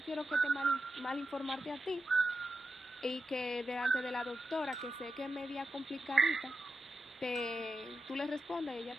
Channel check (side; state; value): both; normal; correlation 0.88